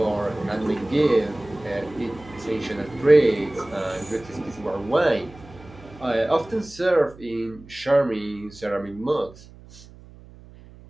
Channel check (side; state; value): right; noise; hum, 21 dB below the sound